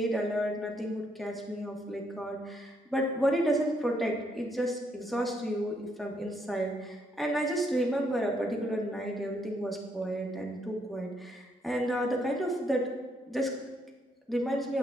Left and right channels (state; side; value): normal; both; correlation 0.74